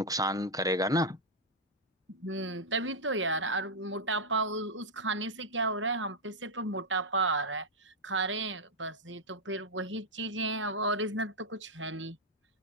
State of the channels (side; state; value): both; normal; correlation -0.04